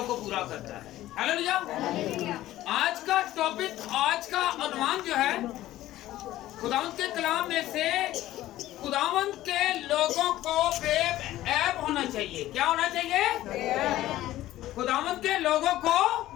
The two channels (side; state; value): right; quieter; 14.9 dB